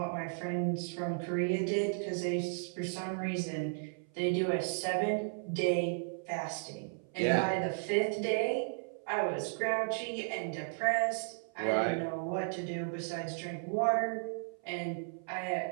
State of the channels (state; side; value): silent; left; 55 dB below the other